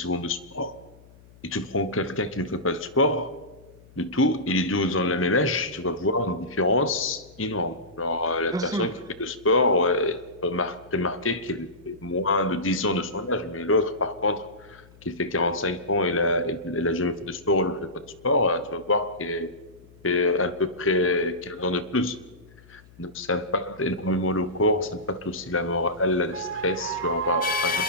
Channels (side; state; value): left; noise; hum, 25 dB below the sound